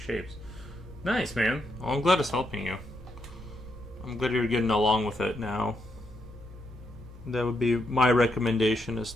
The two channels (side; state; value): both; normal; correlation 0.80